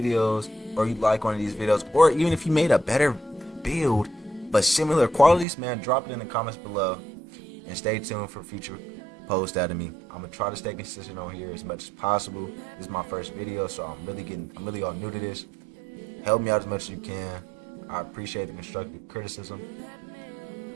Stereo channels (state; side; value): drops out; left; at 5.5 s